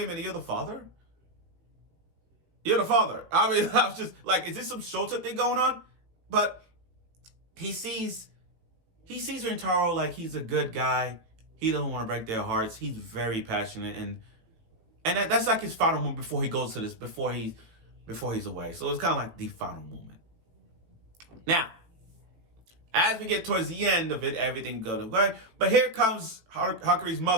a minute, you're the father? You're the father. I mean, I was just like, is this some Shota thing going on? But he sees Rentaro like he's a good guy. He doesn't want to break their hearts. He's very passionate, and that's like his final moment before he goes to this, before he's away. So it's kind of like the final moment. Now, as we get towards the end of it, everything goes away. But here comes Hakari's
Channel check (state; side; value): late; left; 18 ms